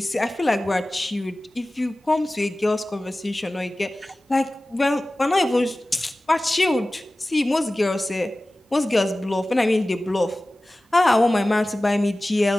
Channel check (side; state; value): both; normal; correlation 0.97